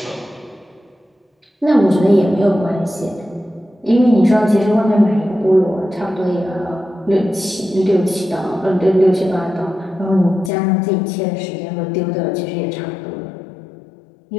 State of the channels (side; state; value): right; drops out; at 10.5 s